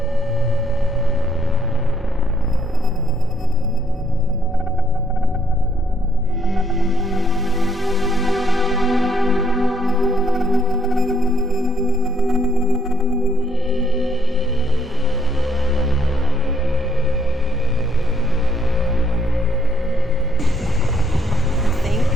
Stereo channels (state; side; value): normal; both; correlation 0.71